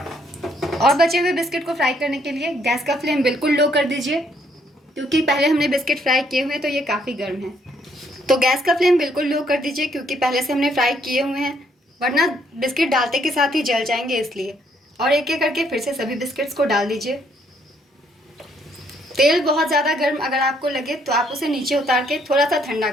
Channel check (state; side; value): normal; both; correlation 0.69